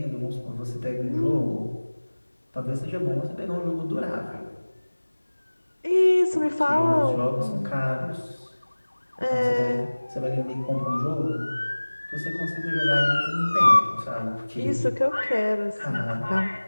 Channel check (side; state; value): both; inverted; correlation -1.00